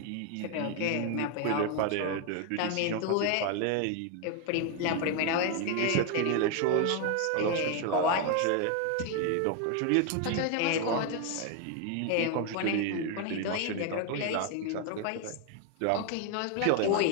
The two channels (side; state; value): both; different; correlation 0.01